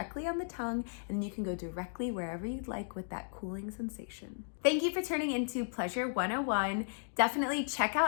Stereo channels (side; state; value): right; silent; digital silence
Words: on the tongue, and you can go directly wherever you'd like with that cooling sensation. Thank you for turning into Pleasure 101. Definitely check